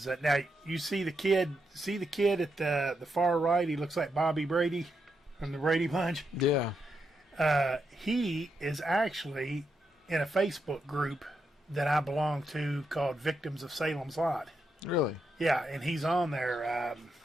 now you see the kid at the far right. He looks like Bobby Brady from the Brady Bunch. Yeah. He is actually in a Facebook group that I belong to called Victims of Salem's Lot. Really? Yeah, and he's on there,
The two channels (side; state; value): both; normal; correlation 0.83